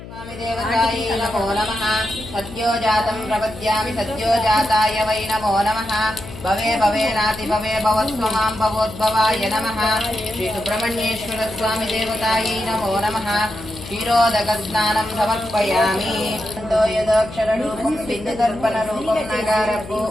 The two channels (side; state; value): left; noise; hum, 14 dB below the sound